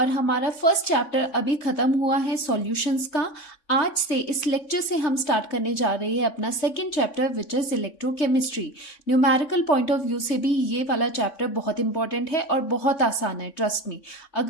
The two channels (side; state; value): right; late; 3.5 ms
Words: हमारा फर्स्ट चैप्टर अभी खत्म हुआ है सॉल्यूशंस का। आज से इस लेक्चर से हम स्टार्ट करने जा रहे हैं अपना second chapter which is electrochemistry. Numerical point of view से भी ये वाला चैप्टर बहुत इंपॉर्टेंट है और बहुत आसान है, ट्रस्ट मी।